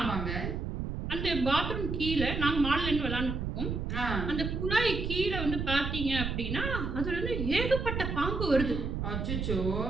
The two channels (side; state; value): right; noise; rumble, 3 dB below the sound